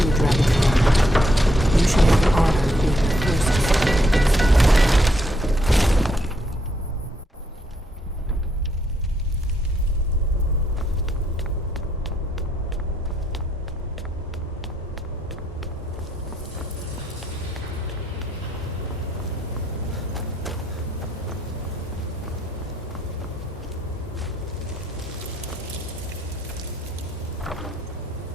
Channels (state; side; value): normal; both; correlation 0.74